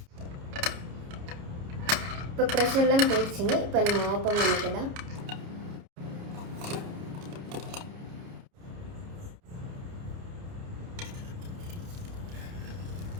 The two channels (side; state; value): left; late; 29 ms